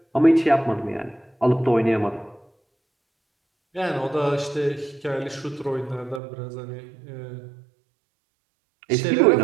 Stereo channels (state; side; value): drops out; left; at 6.2 s